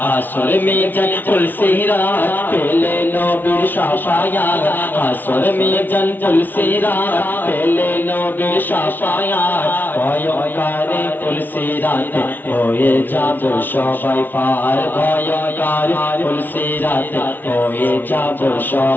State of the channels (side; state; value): right; late; 0.090 ms